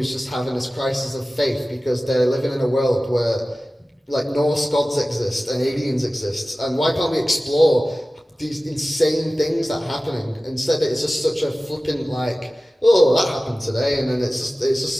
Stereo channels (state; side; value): normal; both; correlation 0.96